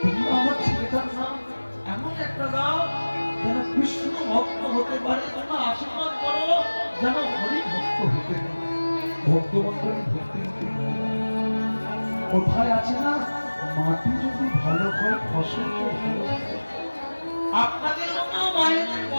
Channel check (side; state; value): both; inverted; correlation -1.00